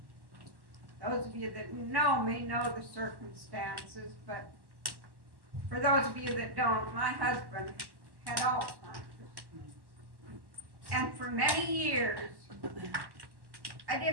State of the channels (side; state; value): left; late; 1.1 ms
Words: Those of you that know me know the circumstances, but for those of you that don't, my husband had Alzheimer's. And for many years, I